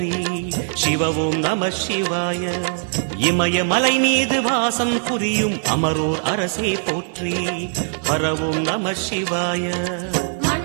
சிவ ஓம் நம சிவாய இமயமலை மீது வாசம் புரியும் அமரோர் அரசே போற்றி ஹர ஓம் நம சிவாய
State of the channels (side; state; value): left; silent; 60 dB below the other